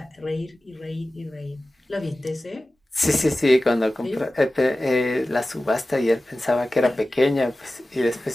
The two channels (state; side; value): normal; both; correlation 0.96